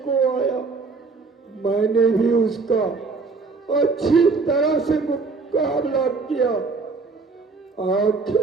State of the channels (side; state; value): left; quieter; 4.2 dB